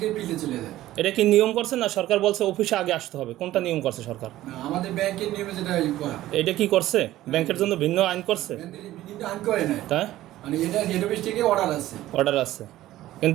ফিল্ডে চলে যায়। এটা কি নিয়ম করছে না সরকার বলছে অফিসে আগে আসতে হবে? কোনটা নিয়ম করছে সরকার? না, আমাদের ব্যাংকের নিয়মে যেটা করা। এটা কি করছে? ব্যাংকের জন্য ভিন্ন আইন করছে? আইন করে না, তাই মানে এটা হেড অফিস থেকে অর্ডার আছে। অর্ডার আছে,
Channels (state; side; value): quieter; left; 15.0 dB